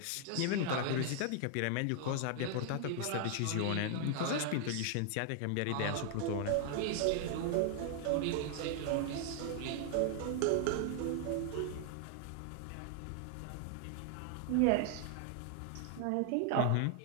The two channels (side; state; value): both; different; correlation 0.00